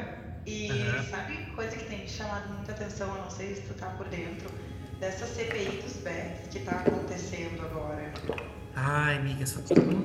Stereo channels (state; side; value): identical; both; correlation 1.00